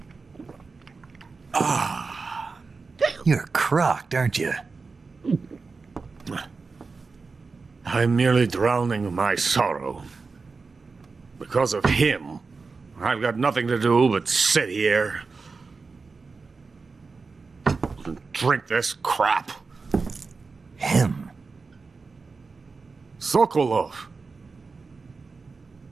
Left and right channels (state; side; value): quieter; left; 4.4 dB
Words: You're crocked, aren't you? I'm merely drowning my sorrow. Because of him, I've got nothing to do but sit here and drink this crap. Him? Sokolov.